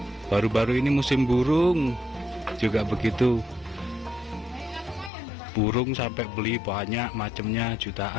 Baru-baru ini musim burung juga begitu. Burung sampai beli banyak macamnya,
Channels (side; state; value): right; drops out; at 5.1 s